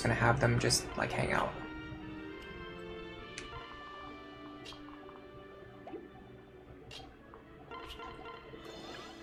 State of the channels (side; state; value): both; identical; correlation 1.00